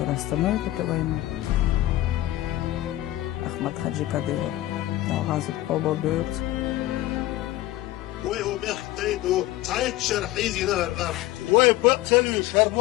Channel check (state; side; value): quieter; right; 16.0 dB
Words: остановит эту войну. Ахмад Хаджи Кадыров дал газу оба берут. ويختيدوا تعيد شرحيزي نهر الأرض ويبقتلوا